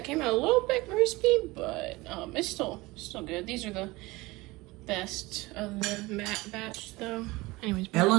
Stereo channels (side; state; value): left; quieter; 21.5 dB